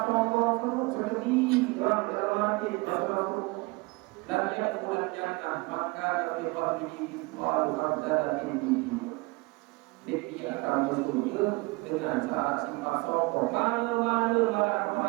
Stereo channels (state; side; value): quieter; left; 25.3 dB